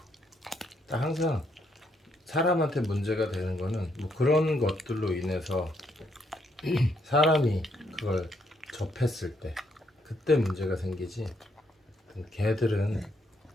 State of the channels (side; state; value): both; normal; correlation 0.73